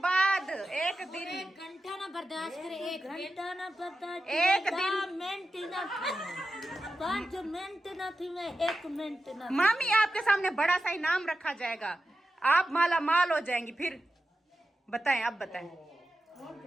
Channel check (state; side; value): normal; both; correlation 0.92